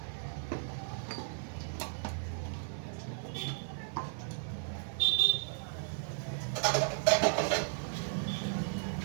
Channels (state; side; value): silent; left; 54 dB below the other